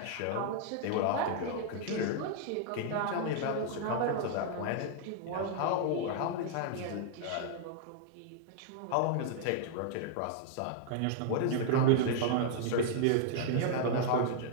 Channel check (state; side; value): different; both; correlation -0.01